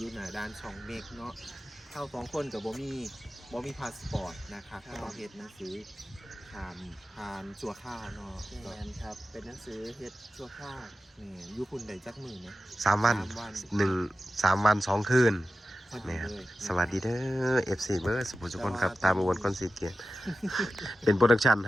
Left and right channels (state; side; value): normal; both; correlation 0.93